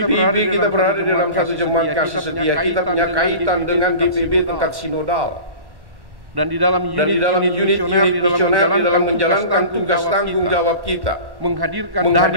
berada di dalam satu jemaat kasih setia. Kita punya kaitan dengan GPIB tingkat sinodal. Dan di dalam unit di dalam menjalankan tugas tanggung jawab kita, menghadirkan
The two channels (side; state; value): left; late; 1.1 ms